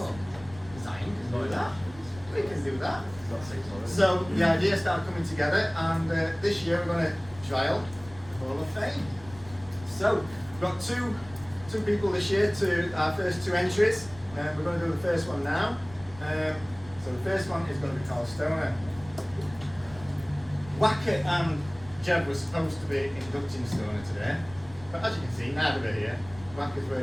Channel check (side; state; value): right; noise; rumble, 19 dB below the sound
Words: Zion can do that. We can do that. So the idea started coming together, and this year we're going to trial Hall of Fame. So we've got two people this year to our first 2 entries. We're going to do the first one now. So the first one is going to be Carl Stoner. Wackett and Jeb were supposed to be inducting Stoner today, but as you can see, neither are here. Wacker's